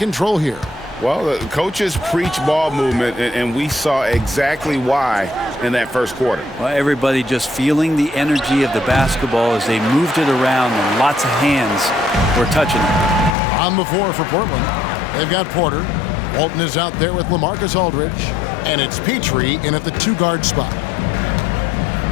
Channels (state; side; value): drops out; right; at 13.4 s